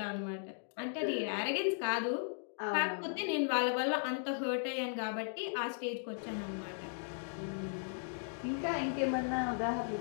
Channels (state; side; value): silent; right; digital silence